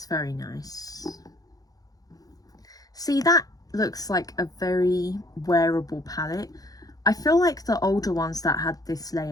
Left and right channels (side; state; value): right; late; 0.18 ms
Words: very nice. See, that looks like a very wearable palette. I feel like the older ones that had this